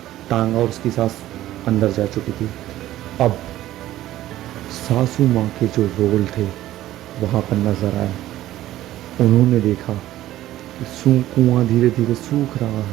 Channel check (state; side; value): quieter; left; 14.4 dB